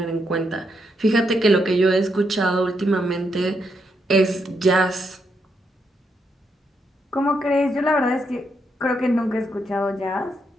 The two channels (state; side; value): normal; both; correlation 0.79